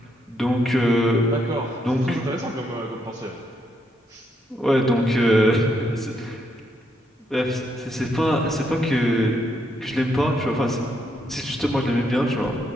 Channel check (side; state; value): both; normal; correlation 0.76